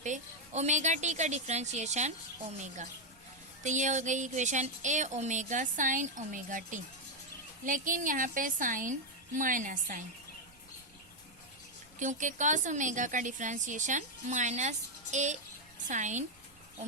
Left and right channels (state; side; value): noise; right; rumble, 28 dB below the sound